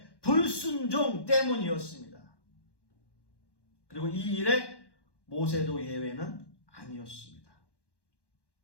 불순종 때문이었습니다. 그리고 이 일에 모세도 예외는 아니었습니다.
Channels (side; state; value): right; late; 1.1 ms